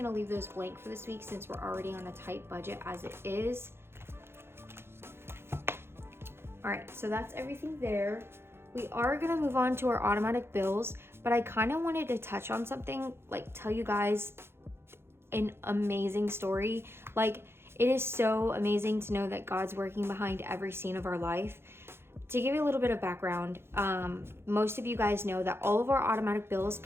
leave those blank for this week since we're already on a tight budget as it is. All right, so that's everything there. We are gonna move on to our automatic bills, but I kind of wanted to touch on something, like tell you guys an amazing story. Like, it is so amazing to know that God's working behind every scene of our life. To give you a little bit of background, most of you guys know that all of our automatic bills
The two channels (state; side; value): late; left; 0.12 ms